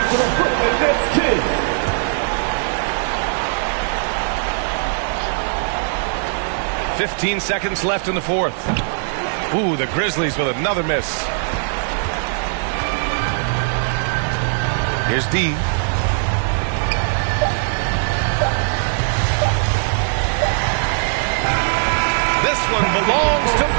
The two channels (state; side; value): silent; left; digital silence